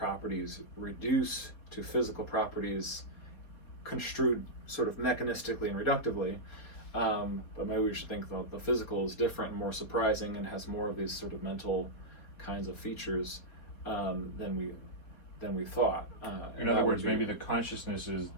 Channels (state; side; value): late; right; 4.2 ms